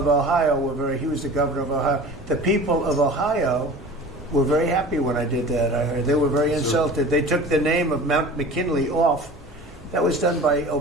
Ohio he was the governor of Ohio. The people of Ohio were very happy when I did that. I heard they were very insulted. They took the name of Mount McKinley off. That was done by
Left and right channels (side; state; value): both; normal; correlation 0.39